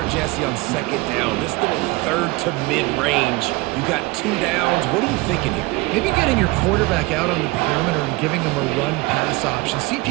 Jesse, on 2nd down, this little 3rd to mid-range, you got 2 downs. What are you thinking here? Maybe getting your quarterback out on the perimeter and giving him a run-pass option. See if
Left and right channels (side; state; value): left; quieter; 22.8 dB